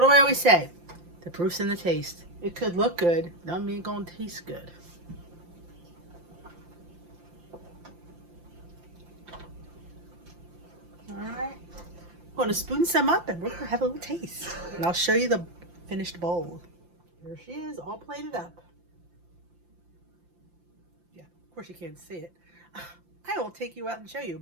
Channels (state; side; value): late; left; 5.8 ms